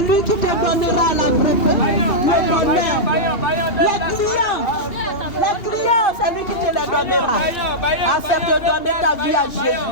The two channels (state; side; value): late; right; 2.8 ms